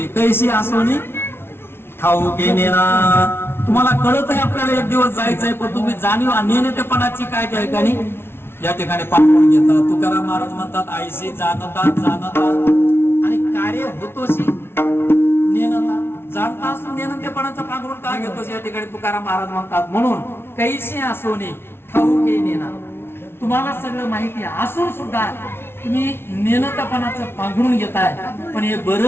कैशी आसोनी ठाऊके नेना. तुम्हाला कळत आहे आपल्याला एक दिवस जायचंय, पण तुम्ही जाणीव नेणतेपणाची काय त्या ठिकाणी या ठिकाणी पांघरून घेता. तुकाराम महाराज म्हणतात आईशी जाणता आणि कार्य होतोशी नेनता. जाणता असून नेणतेपणाचं पांघरून का घेतोस या ठिकाणी तुकाराम महाराज म्हणतात. म्हणून कैशी आसोनी ठाऊके नेना. तुम्हाला सगळं माहिती असून सुद्धा तुम्ही नेणतेपणाचं पांघरून घेताय, पण हे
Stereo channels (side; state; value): right; late; 0.12 ms